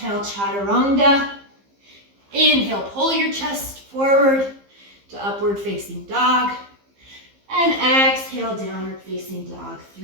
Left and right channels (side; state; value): left; late; 15 ms